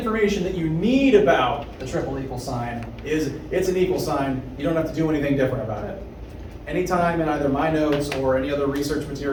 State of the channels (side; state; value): both; identical; correlation 1.00